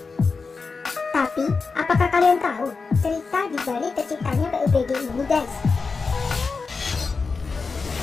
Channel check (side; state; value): right; quieter; 4.6 dB